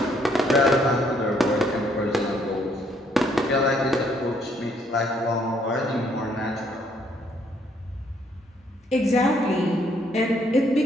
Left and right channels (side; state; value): both; normal; correlation 0.68